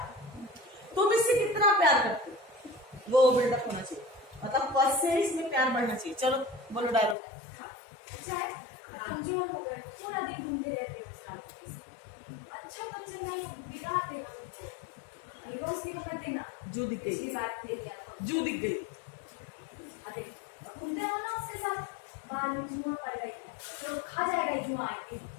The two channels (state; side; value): drops out; right; at 7.2 s